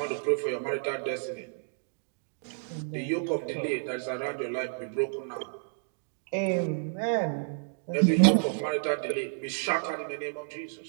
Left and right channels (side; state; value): left; silent; digital silence